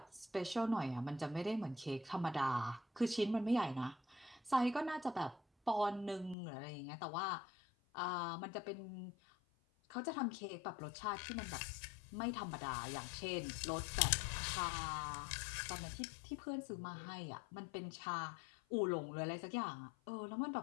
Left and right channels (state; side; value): drops out; right; at 6.4 s